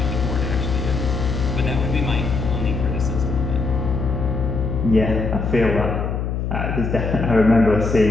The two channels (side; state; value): left; noise; hum, 2 dB below the sound